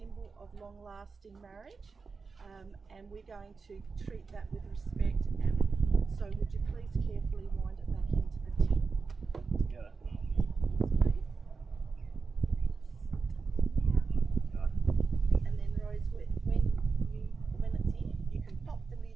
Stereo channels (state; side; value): quieter; left; 4.7 dB